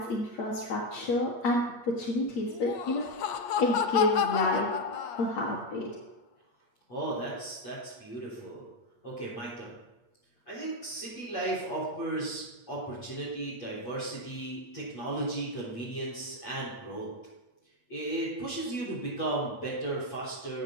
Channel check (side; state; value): right; late; 8.5 ms